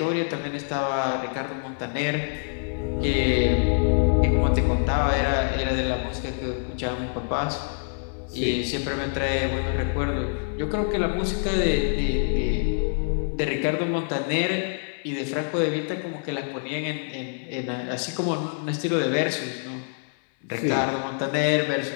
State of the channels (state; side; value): silent; right; 61 dB below the other